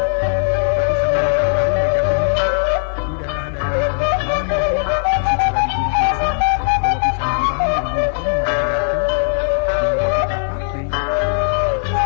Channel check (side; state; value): right; silent; digital silence